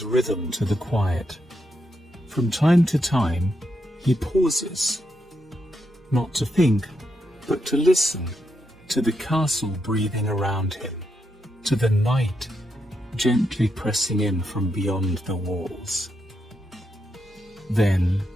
rhythm to the quiet. From time to time, he pauses, not to think, but to listen to the castle breathing around him, to the night gently pressing in from beyond the walls. Then,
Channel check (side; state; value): both; normal; correlation 0.82